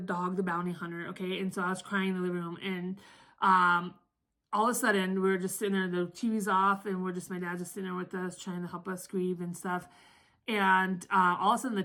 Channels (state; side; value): identical; both; correlation 1.00